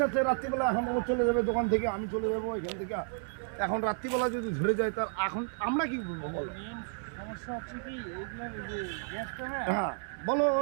রাত্রিবেলা এখন ও চলে যাবে দোকান থেকে, আমি চলে যাবো এখান থেকে। এখন রাত্রিবেলা যদি ধরে যায় তার এখন আমরা কি বলবো বলো? সমস্যা হচ্ছে কি এইগুলা যে গ্যাসটা না, হ্যাঁ বলো ও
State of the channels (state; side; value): silent; left; 56 dB below the other